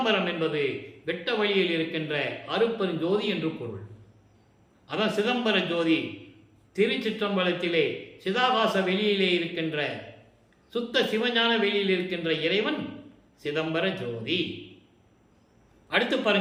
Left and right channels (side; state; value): both; identical; correlation 1.00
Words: என்பது வெட்ட வழியில் இருக்கின்ற அருப்பெருஞ்சோதி என்று பொருள். அதான் சிதம்பர ஜோதி. திருச்சிற்றம்பலத்திலே சிதாகாச வெளியிலே இருக்கின்ற சுத்த சிவஞான வெளியில் இருக்கின்ற இறைவன் சிதம்பர ஜோதி. அடுத்து